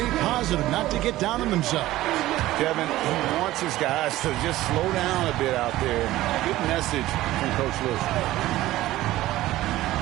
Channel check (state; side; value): quieter; left; 16.0 dB